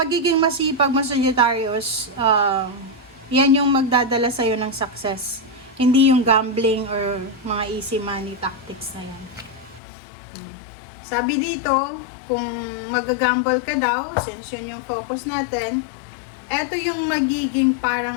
masipag mo sa Sagittarius, yan yung magdadala sa'yo ng success. Hindi yung gambling or mga easy money tactics na yan. Sabi dito, kung mag-gamble ka daw, since yun yung focus natin, eto yung magiging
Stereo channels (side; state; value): right; drops out; at 9.8 s